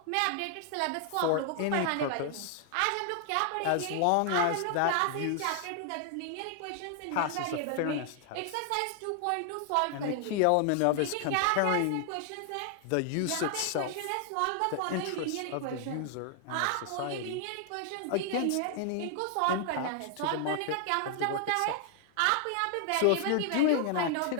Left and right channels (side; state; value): both; different; correlation 0.00